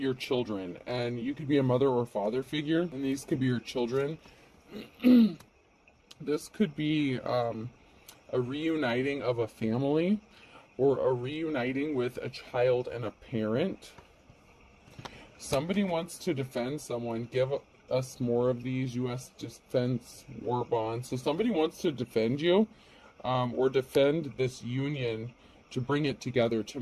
children, and you could be a mother or father figure, and these could be your children. This could be a reuniting of a family, or a reuniting with a child and a parent. Somebody wants to defend someone. Give us more of these U.S. defense war bonds. So somebody wants to defend you, or defend this union, to bring it together, to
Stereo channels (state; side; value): identical; both; correlation 1.00